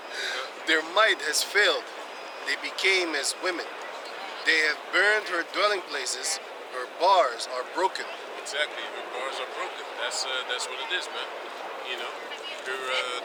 Their might has failed. They became as women. They have burned her dwelling places. Her bars are broken. Exactly. Her bars are broken. That's what it is, man.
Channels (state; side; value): identical; both; correlation 1.00